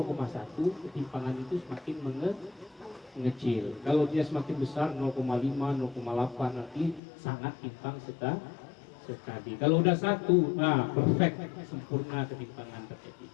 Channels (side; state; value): right; drops out; at 7.0 s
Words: ketimpangan itu semakin mengecil. Kalau dia semakin besar 0,5, 0,8, nanti sangat timpang sekali. Kalau udah 1, nah perfect, sempurna ketimpangan terjadi.